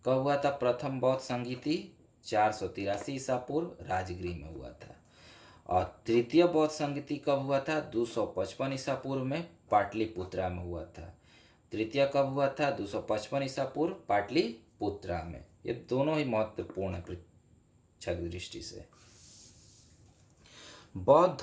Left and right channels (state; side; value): identical; both; correlation 1.00